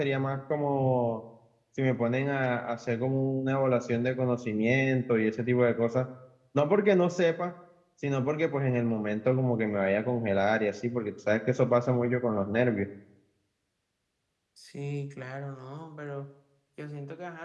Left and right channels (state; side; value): identical; both; correlation 1.00